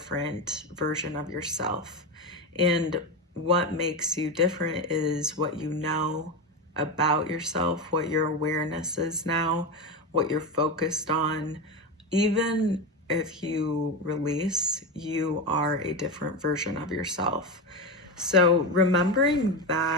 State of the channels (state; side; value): normal; both; correlation 0.17